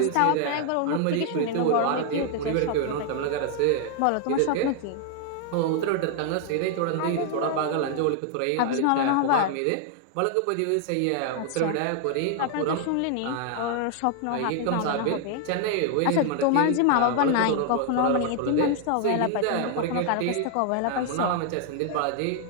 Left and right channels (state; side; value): different; both; correlation 0.00